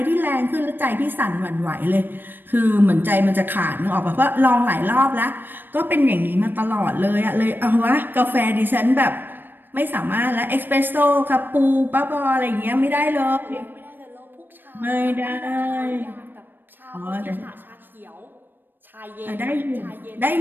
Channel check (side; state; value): left; late; 0.094 ms